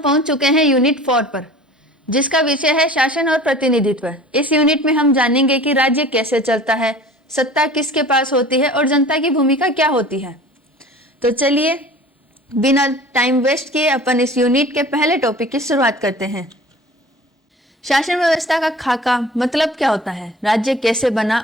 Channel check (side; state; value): both; normal; correlation 0.43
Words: चुके हैं यूनिट 4 पर, जिसका विषय है शासन और प्रतिनिधित्व। इस यूनिट में हम जानेंगे कि राज्य कैसे चलता है, सत्ता किसके पास होती है और जनता की भूमिका क्या होती है। तो चलिए बिना टाइम वेस्ट किए अपन इस यूनिट के पहले टॉपिक की शुरुआत करते हैं। शासन व्यवस्था का खाका मतलब क्या होता है, राज्य कैसे बना